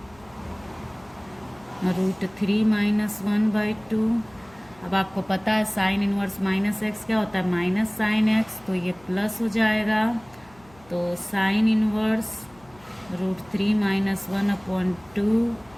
√3 माइनस 1/2। अब आपको पता है साइन इनवर्स माइनस एक्स क्या होता है, माइनस साइन एक्स, तो ये प्लस हो जाएगा। तो sine inverse √3 minus 1/2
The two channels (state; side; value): noise; left; hum, 26 dB below the sound